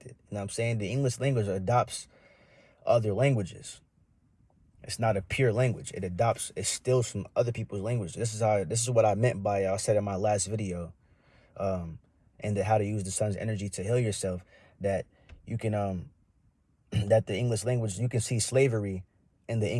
You know what I'm saying? The English language adopts other languages. It's not a pure language. It steals from other people's language. This is what I meant by, I said in my last video, and how to use the sun's energy to heal yourself, that you can that the English language, you can see slavery in the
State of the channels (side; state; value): both; identical; correlation 1.00